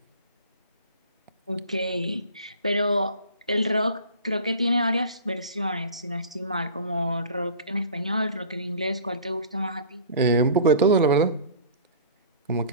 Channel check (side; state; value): both; inverted; correlation -0.41